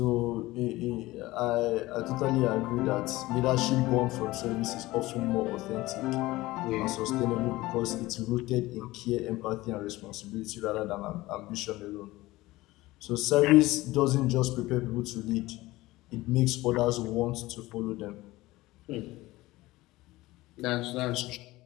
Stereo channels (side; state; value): right; quieter; 18.8 dB